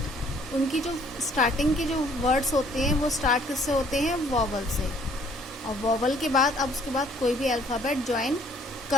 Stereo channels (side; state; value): both; normal; correlation 0.60